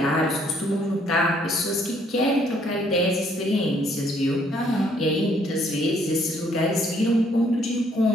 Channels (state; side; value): normal; both; correlation 0.66